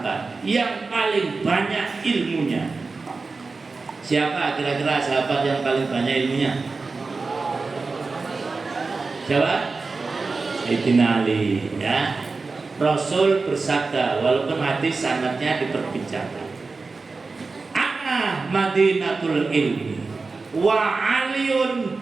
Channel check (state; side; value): quieter; left; 4.0 dB